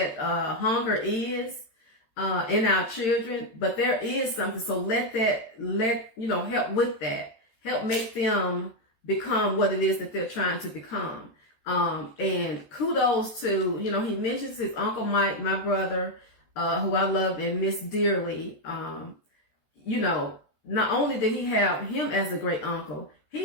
hunger is in our children, but there is something. So help with that. Help make them become what it is that they're trying to become. And kudos to, he mentions his Uncle Mike, my brother, who I love and miss dearly. Not only did he have him as a great uncle,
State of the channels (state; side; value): late; right; 13 ms